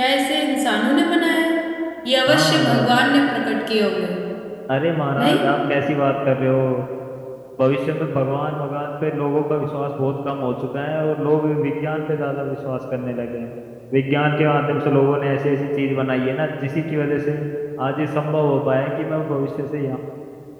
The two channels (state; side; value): identical; both; correlation 1.00